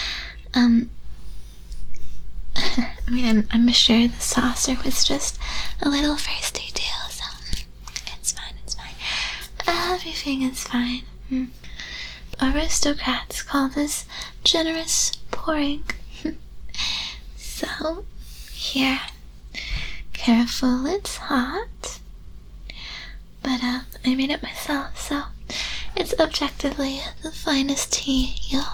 I mean, I'm sure the saucer was just a little thirsty too, so it's fine. Everything is fine. aristocrats call this generous pouring. So, here. Careful, it's hot. But, I made it myself, so it's objectively the finest tea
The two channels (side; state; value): both; identical; correlation 1.00